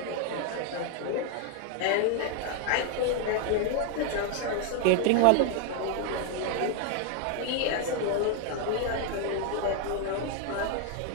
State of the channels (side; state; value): both; different; correlation 0.01